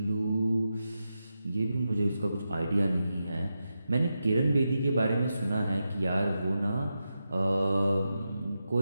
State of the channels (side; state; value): both; inverted; correlation -0.89